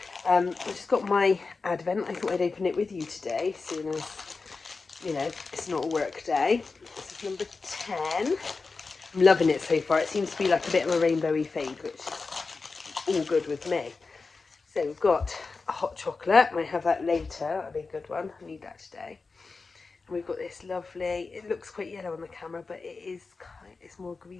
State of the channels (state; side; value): quieter; right; 4.2 dB